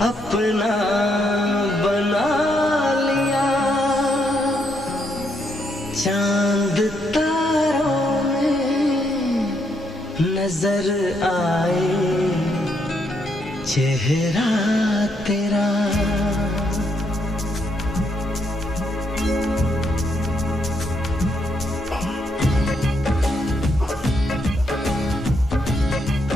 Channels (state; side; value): normal; both; correlation 0.76